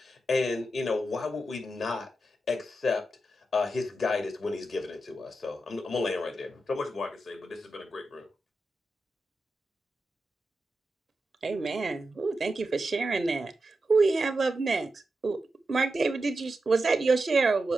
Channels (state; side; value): normal; both; correlation 0.89